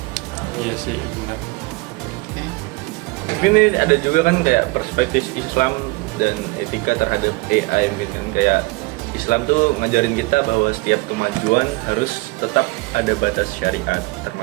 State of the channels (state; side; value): quieter; left; 24.7 dB